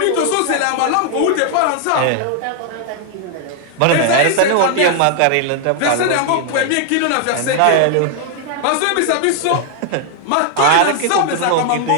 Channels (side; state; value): both; different; correlation 0.00